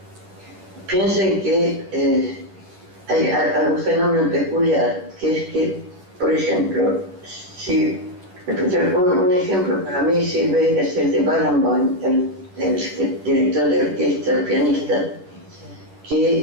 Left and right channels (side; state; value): left; late; 11 ms